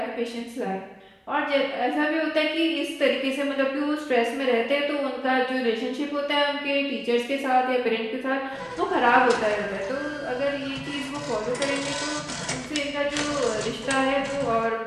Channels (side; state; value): both; identical; correlation 1.00